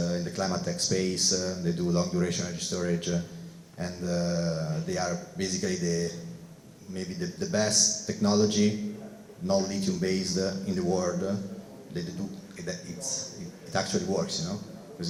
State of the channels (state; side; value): identical; both; correlation 1.00